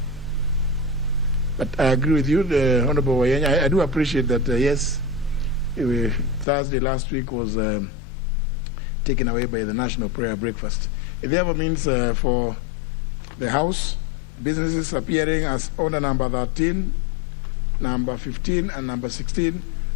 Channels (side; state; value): right; drops out; at 6.5 s